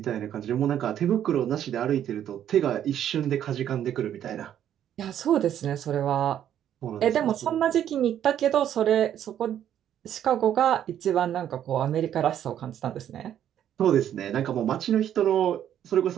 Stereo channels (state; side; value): quieter; left; 10.4 dB